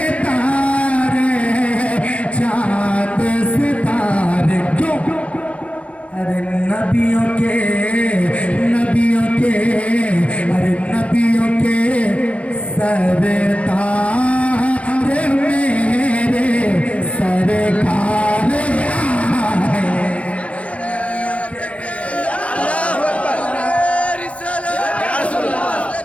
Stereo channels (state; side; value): late; right; 0.063 ms